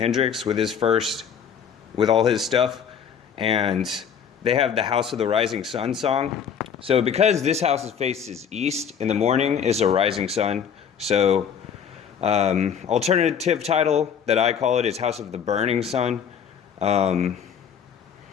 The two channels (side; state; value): right; quieter; 7.7 dB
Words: with all his stuff. And they have the House of the Rising Sun song. So because this house's face is east, in the morning is a rising sun. So alternative title that I call it is House of the Burning Sun. I